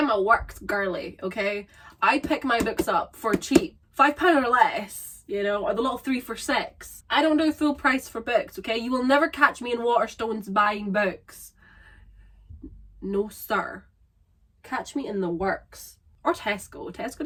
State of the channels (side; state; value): both; identical; correlation 1.00